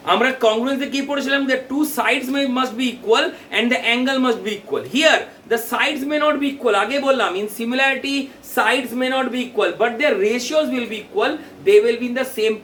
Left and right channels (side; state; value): both; identical; correlation 1.00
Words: আমরা congruence কি পড়েছিলাম, the two sides must be equal and the angle must be equal. Here the sides may not be equal. আগে বললাম in similarity sides may not be equal, but their ratios will be equal. They will be in the same